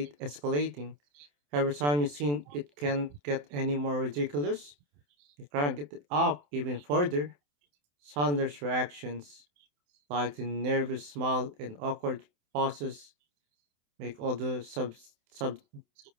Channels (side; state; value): left; late; 27 ms